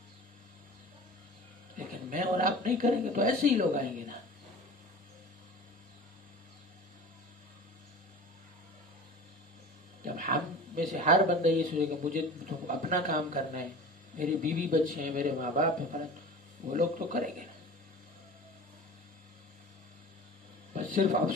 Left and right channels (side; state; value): both; normal; correlation 0.37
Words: لیکن میں اور آپ نہیں کریں گے تو ایسے ہی لوگ آئیں گے نا. جب ہم میں سے ہر بندہ یہ سوچے کہ مجھے تو اپنا کام کرنا ہے، میری بیوی بچے ہیں، میرے ماں باپ ہیں، وہ لوگ تو کریں گے نا. بس صرف